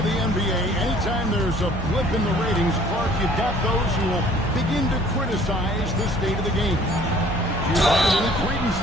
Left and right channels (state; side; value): normal; both; correlation 0.54